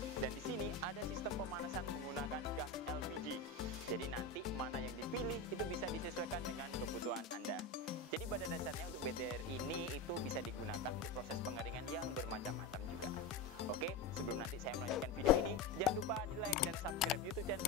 dan di sini ada sistem pemanasan menggunakan gas LPG. Jadi nanti mana yang dipilih itu bisa disesuaikan dengan kebutuhan Anda. Jadi pada dasarnya untuk bed dryer ini itu bisa digunakan untuk proses pengeringan yang bermacam-macam juga. Oke, sebelum nanti saya melanjutkan video ini, jangan lupa di like dan subscribe YouTube channel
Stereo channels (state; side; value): quieter; right; 3.3 dB